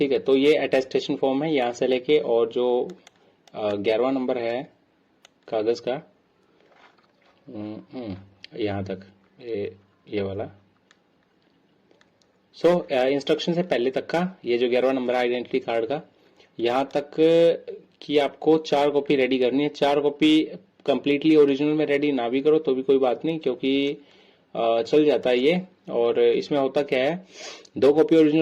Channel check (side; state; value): both; identical; correlation 1.00